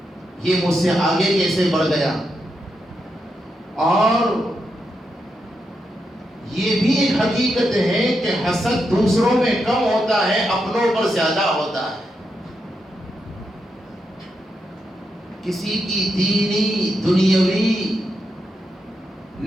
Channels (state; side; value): normal; both; correlation 0.84